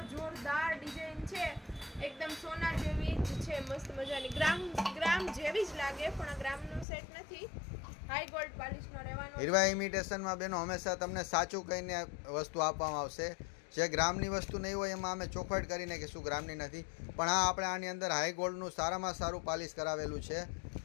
જોરદાર ડિઝાઇન છે, એકદમ સોના જેવી જ છે, મસ્ત મજાની ગ્રામ જેવી જ લાગે, પણ આ ગ્રામનો સેટ નથી, હાઈ ગોલ્ડ પોલિશનો રહેવાનો. હીરવા ઇમિટેશનમાં બેનો હંમેશા તમને સાચું કહીને વસ્તુ આપવામાં આવશે. જે ગ્રામની વસ્તુ નહીં હોય એમાં અમે ચોખવટ કરીને કે શું ગ્રામની નથી, પણ આ આપણે આની અંદર હાઈ ગોલ્ડનું સારામાં સારું પાલિશ કરાવેલું છે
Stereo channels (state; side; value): drops out; right; at 6.9 s